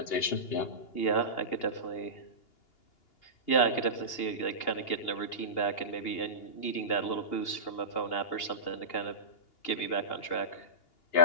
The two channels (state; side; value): late; right; 2.8 ms